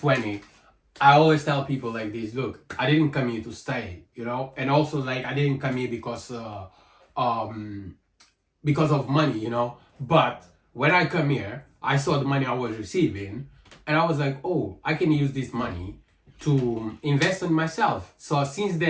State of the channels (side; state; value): both; identical; correlation 1.00